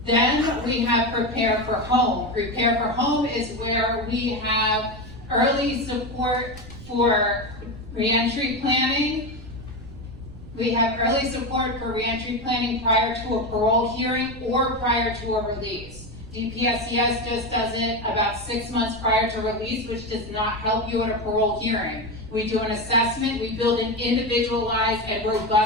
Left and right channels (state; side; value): noise; right; rumble, 17 dB below the sound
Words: Then we have Prepare for Home. Prepare for Home is where we have early support for reentry planning. We have early support for reentry planning prior to a parole hearing or prior to a release. DPSCS just does it about 6 months prior to release, which does not help you at a parole hearing. We do an assessment, we build an individualized and